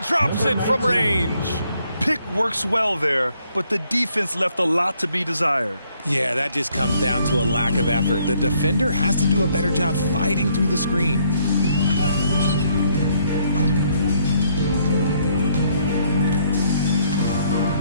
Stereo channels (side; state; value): both; inverted; correlation -0.68